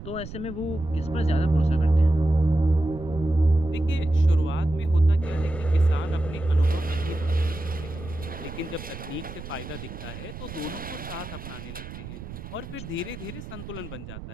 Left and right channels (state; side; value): noise; right; rumble, 12 dB below the sound